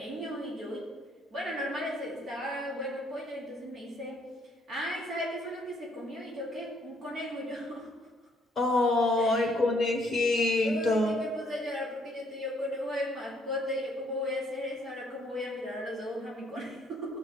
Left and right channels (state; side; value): normal; both; correlation 0.67